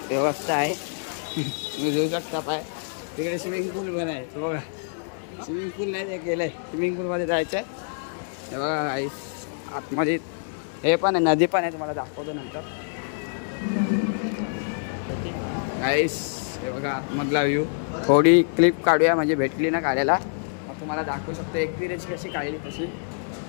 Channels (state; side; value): silent; right; digital silence